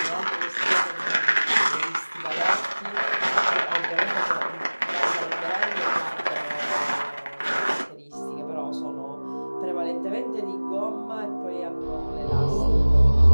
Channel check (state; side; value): inverted; both; correlation -1.00